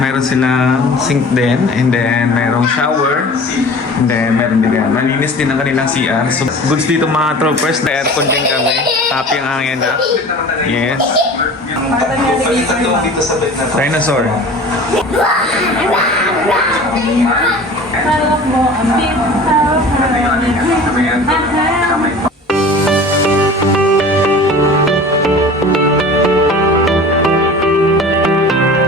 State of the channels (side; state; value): both; normal; correlation 0.41